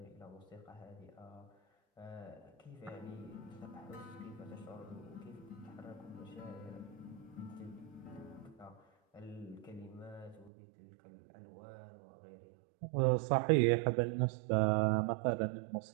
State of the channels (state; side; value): drops out; left; at 10.5 s